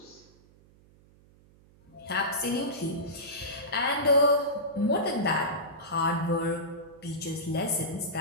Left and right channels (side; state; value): right; noise; hum, 28 dB below the sound